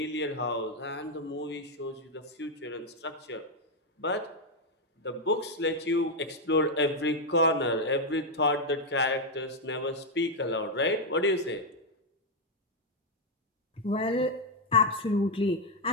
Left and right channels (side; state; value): both; normal; correlation 0.02